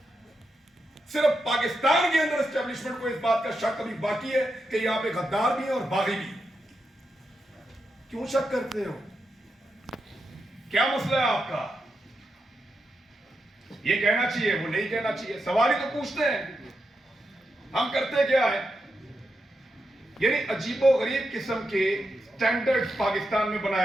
صرف پاکستان کے اندر اسٹیبلشمنٹ کو اس بات کا شک ابھی باقی ہے کہ یہاں پہ غدار بھی ہیں اور باغی بھی. کیوں شک کرتے ہو؟ کیا مسئلہ ہے آپ کا؟ یہ کہنا چاہیے، وہ نہیں کہنا چاہیے. سوال ہی تو پوچھتے ہیں. ہم کرتے کیا ہے؟ یعنی عجیب و غریب قسم کے سٹینڈرڈ پاکستان میں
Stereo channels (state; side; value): normal; both; correlation 0.86